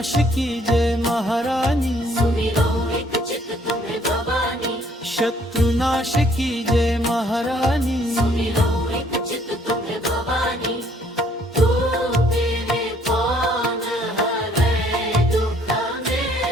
की जय महारानी सुमिरो एक चित तुम्हें भवानी शत्रुनाश की जय महारानी सुमिरो एक चित तुम्हें भवानी तू तेरे कौन हरे दुख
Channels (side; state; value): both; normal; correlation 0.63